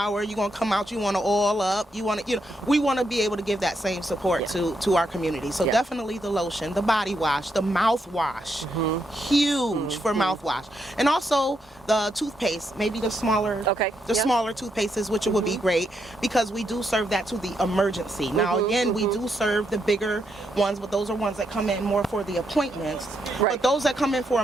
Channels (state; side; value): normal; both; correlation 0.79